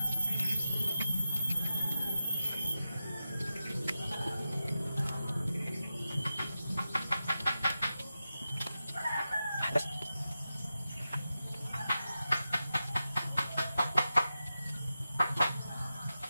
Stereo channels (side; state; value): both; inverted; correlation -0.91